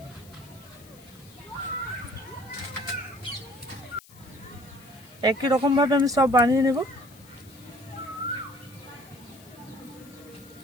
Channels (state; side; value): noise; left; hiss, 23 dB below the sound